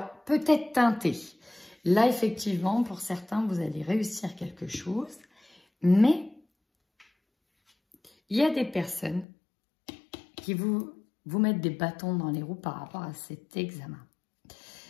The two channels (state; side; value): drops out; right; at 9.2 s